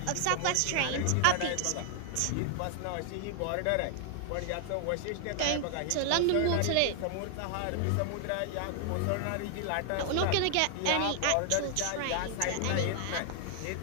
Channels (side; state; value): both; different; correlation 0.00